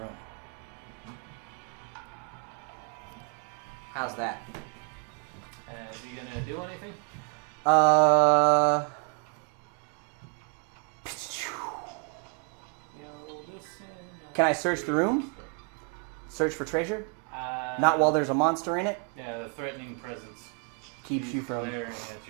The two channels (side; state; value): left; quieter; 35.9 dB